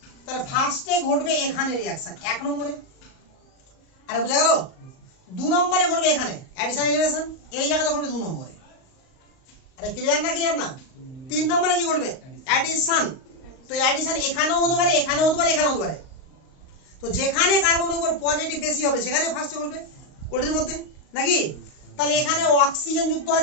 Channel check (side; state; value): right; late; 38 ms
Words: তাহলে ফার্স্টে ঘটবে এখানে রিয়াকশন 1 নম্বরে, আরে বুঝা গেল? 2 নম্বরে ঘটবে এখানে অ্যাডিশন এলিমিনেশন, এই জায়গাতে ঘটবে 2 নম্বরে। আরে ক্লিয়ার না? ক্লিয়ার না? 3 নম্বরে কি ঘটবে? অ্যাডিশন। তো অ্যাডিশন এখানেও হতে পারে, এখানেও হতে পারে, এখানেও হতে পারে। তো যেখানে কার্বনের উপর পজিটিভ বেশি হবে সেখানে ফার্স্টে ঘটবে ওটির মধ্যে, নাকি? তাহলে এখানে অক্সিজেন যুক্ত